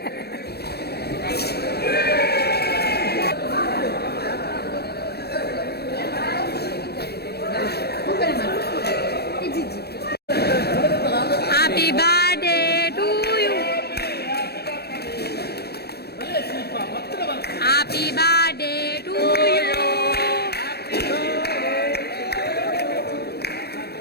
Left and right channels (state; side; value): late; right; 0.47 ms